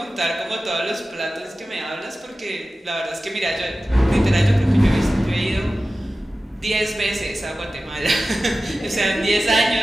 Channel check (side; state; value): both; normal; correlation 0.95